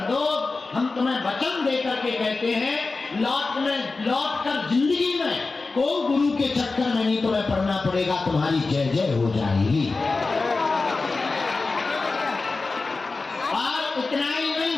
दो। हम तुम्हें वचन देकर के कहते हैं लौट कर जिंदगी में कोई गुरु के चक्कर में नहीं तुम्हें पढ़ना पड़ेगा, तुम्हारी जय जय हो जाएगी। और इतना ही नहीं,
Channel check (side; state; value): right; quieter; 3.8 dB